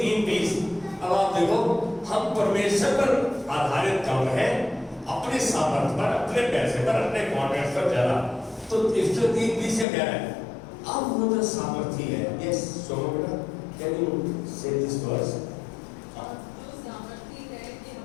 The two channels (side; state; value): right; drops out; at 9.9 s